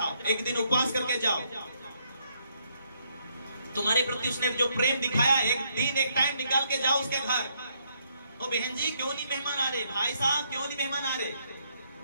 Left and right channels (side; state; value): both; inverted; correlation -0.73